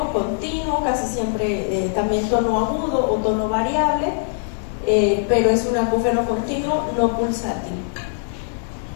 Continuo, casi siempre también tono agudo o tono variable, pero es un acúfeno continuo no pulsátil.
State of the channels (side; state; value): right; silent; digital silence